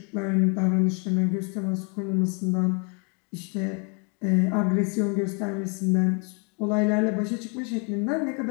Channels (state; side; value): quieter; right; 35.5 dB